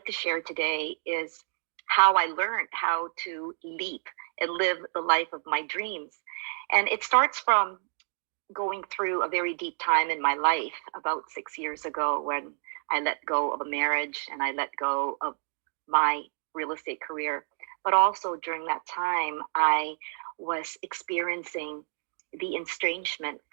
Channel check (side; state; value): left; silent; digital silence